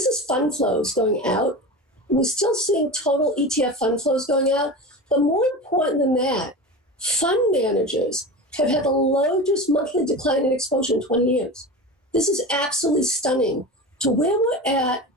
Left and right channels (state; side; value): normal; both; correlation 0.28